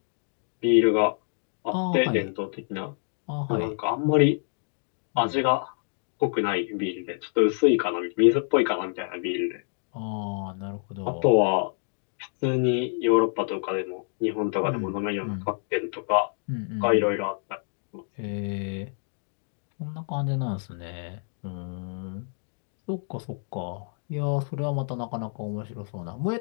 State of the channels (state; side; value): silent; right; 60 dB below the other